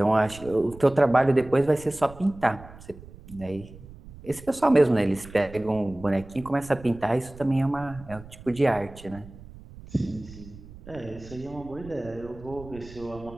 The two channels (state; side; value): noise; right; rumble, 18 dB below the sound